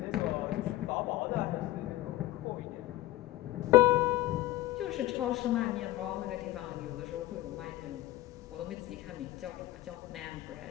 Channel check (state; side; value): quieter; right; 16.8 dB